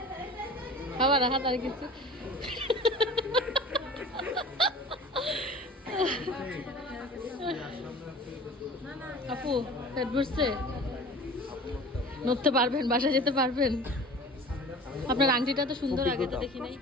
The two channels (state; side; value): normal; both; correlation 0.41